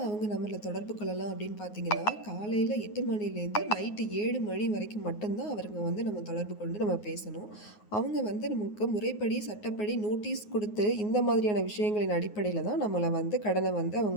அவங்க நம்மளை தொடர்பு கொள்ளலாம் அப்படின்னு பார்த்தீங்கன்னா காலையில் 8 மணிலேருந்து நைட்டு 7 மணி வரைக்கும் மட்டும்தான் அவருங்க வந்து நம்ம தொடர்பு கொண்டு நம்ம பேசணும். அவங்க வந்து நமக்கு முறைப்படி சட்டப்படி நோட்டீஸ் கொடுத்து இந்த மாதிரியான விஷயங்களின் அடிப்படையில் தான் நம்மளை வந்து கடனை வந்து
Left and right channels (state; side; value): late; right; 9.5 ms